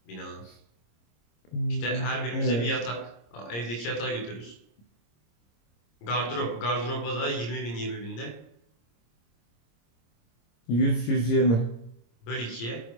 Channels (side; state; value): right; late; 26 ms